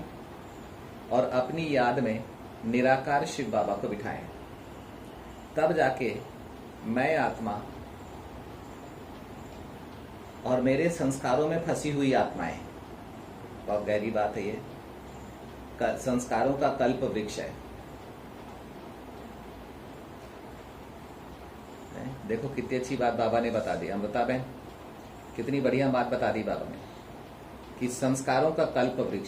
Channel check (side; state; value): both; identical; correlation 1.00